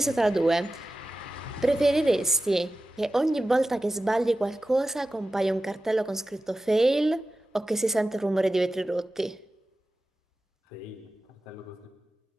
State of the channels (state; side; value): normal; both; correlation 0.94